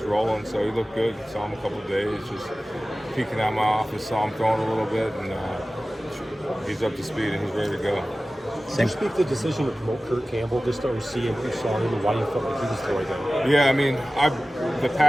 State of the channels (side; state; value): both; normal; correlation 0.96